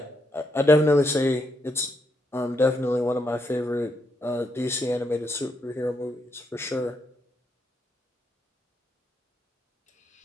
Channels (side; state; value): both; normal; correlation 0.79